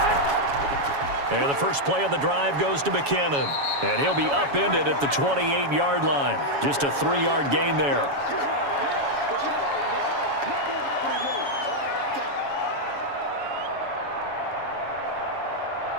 And the first play of the drive goes to McKinnon. And he'll be upended at the 28-yard line. Just a 3-yard gain there.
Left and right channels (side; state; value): left; late; 7.1 ms